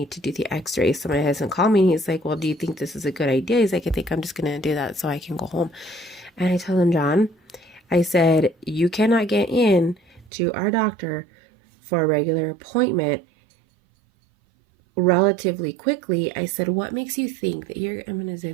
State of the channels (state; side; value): drops out; left; at 10.3 s